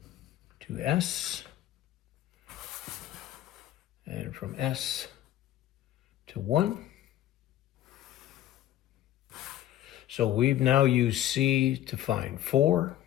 to S, and from S to 1. So we've now used C to find 4,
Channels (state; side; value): quieter; right; 13.0 dB